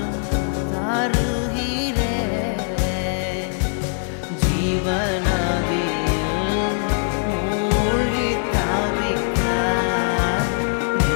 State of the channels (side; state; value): right; silent; digital silence